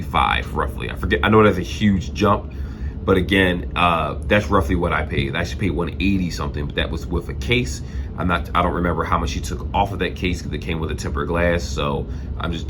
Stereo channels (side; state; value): both; identical; correlation 1.00